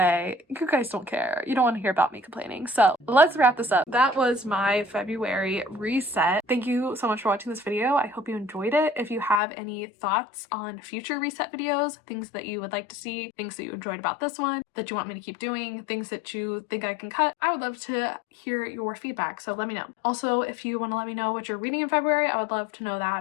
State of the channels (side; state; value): right; drops out; at 9.4 s